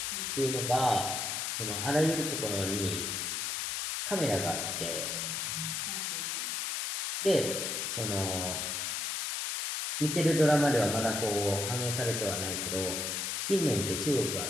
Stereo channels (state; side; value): noise; left; hiss, 1 dB below the sound